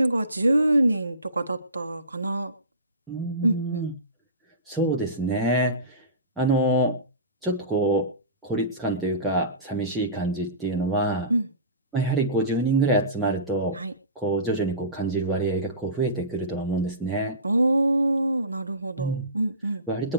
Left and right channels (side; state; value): both; inverted; correlation -0.33